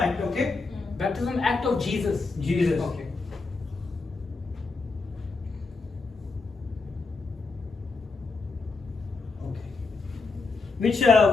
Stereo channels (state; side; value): quieter; right; 4.1 dB